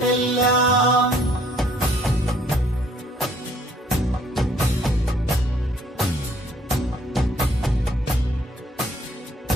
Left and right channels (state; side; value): normal; both; correlation 0.63